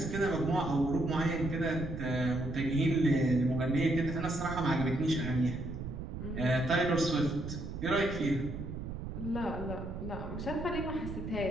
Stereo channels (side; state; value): right; noise; rumble, 7 dB below the sound